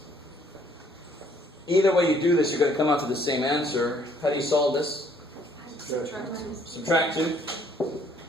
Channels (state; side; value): normal; both; correlation 0.63